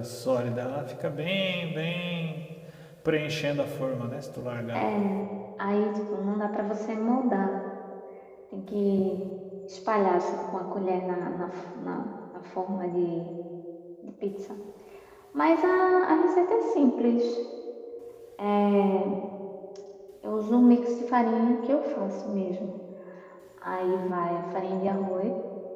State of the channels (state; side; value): identical; both; correlation 1.00